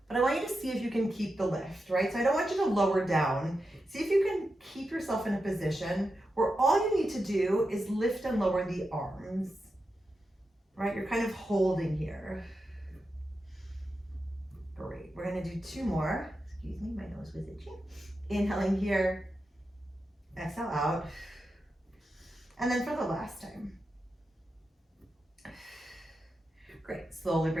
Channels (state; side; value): normal; both; correlation 0.89